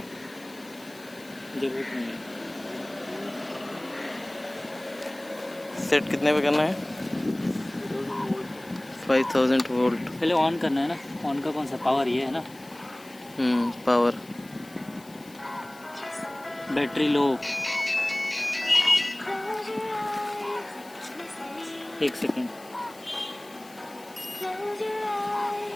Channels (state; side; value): noise; left; hiss, 23 dB below the sound